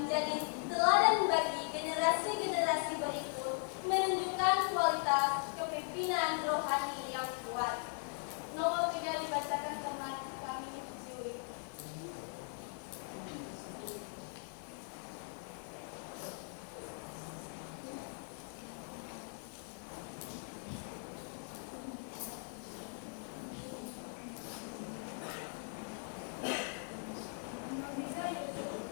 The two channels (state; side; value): silent; right; 52 dB below the other